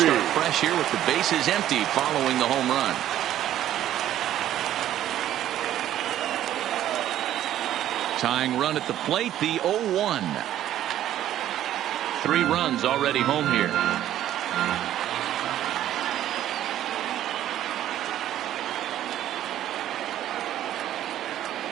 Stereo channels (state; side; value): quieter; left; 12.2 dB